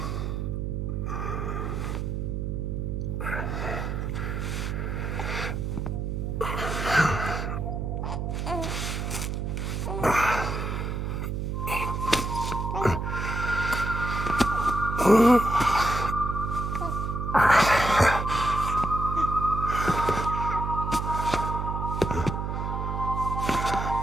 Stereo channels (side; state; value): right; noise; hum, 2 dB below the sound